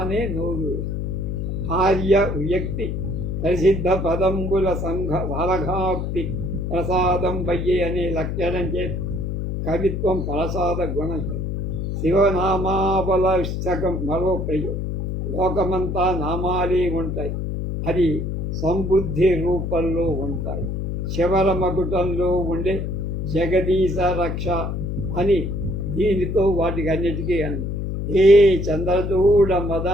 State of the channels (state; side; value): noise; left; hum, 3 dB below the sound